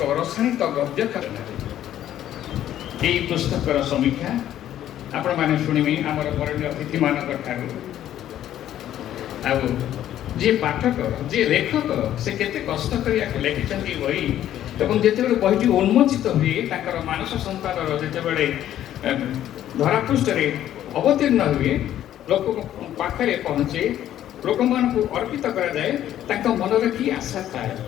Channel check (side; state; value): right; quieter; 11.8 dB